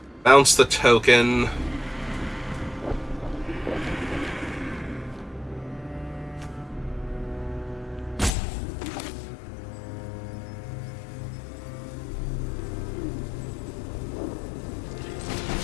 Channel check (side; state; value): right; drops out; at 8.3 s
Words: bounce the token.